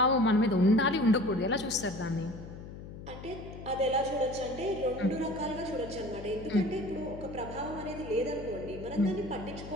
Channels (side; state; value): left; noise; hum, 12 dB below the sound